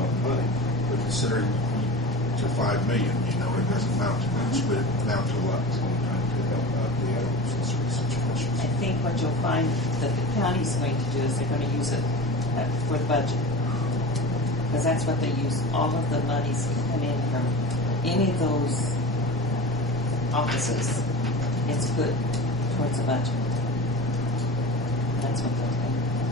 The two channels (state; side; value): normal; both; correlation 0.32